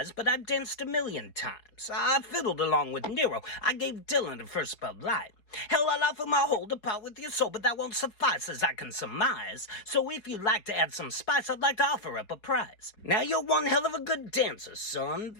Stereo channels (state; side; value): late; right; 4.8 ms